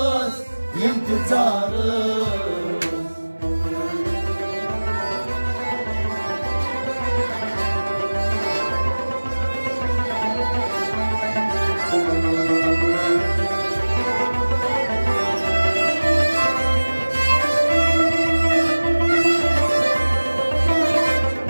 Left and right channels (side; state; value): both; inverted; correlation -1.00